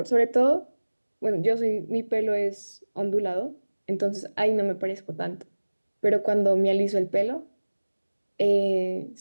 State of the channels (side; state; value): both; inverted; correlation -1.00